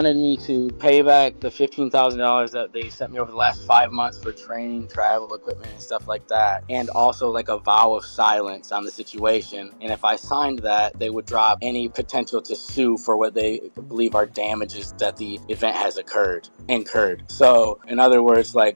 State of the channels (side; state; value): both; inverted; correlation -1.00